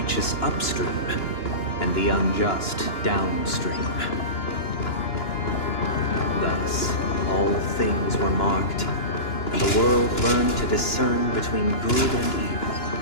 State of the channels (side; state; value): right; late; 2.9 ms